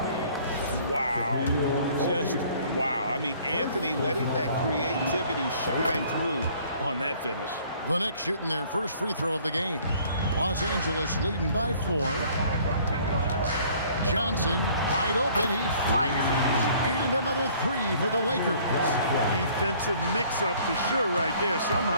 Wow. Just wow. I mean, Anthony letting that creativity shine through on that finish. the Knicks shooting their first free throw of the game. Los Angeles leading by 4. Johnson wide open. He fires. And another 3 for the Lakers. Defensive mix-up for sure right there.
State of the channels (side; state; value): both; inverted; correlation -0.56